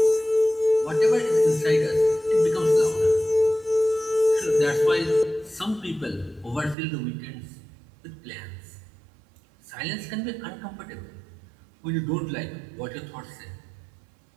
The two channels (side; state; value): left; drops out; at 6.8 s